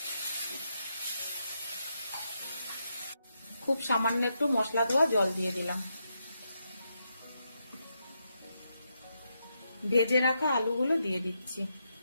খুব সামান্য একটু মশলা ধোয়া জল দিয়ে দিলাম। ভেজে রাখা আলুগুলো দিয়ে দিচ্ছি।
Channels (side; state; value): both; inverted; correlation -0.83